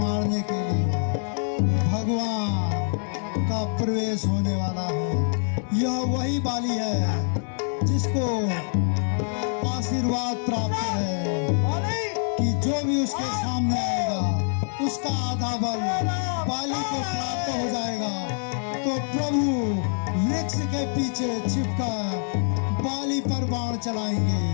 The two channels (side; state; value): right; silent; 61 dB below the other